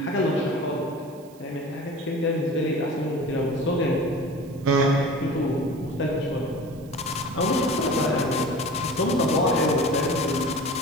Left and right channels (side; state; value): right; noise; hiss, 26 dB below the sound